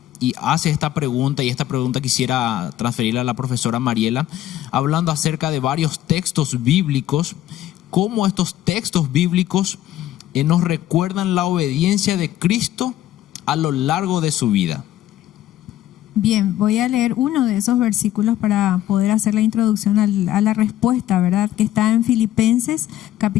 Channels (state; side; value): quieter; right; 13.1 dB